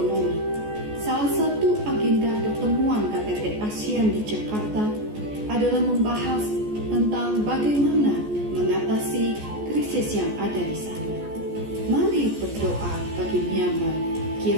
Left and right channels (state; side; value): late; left; 14 ms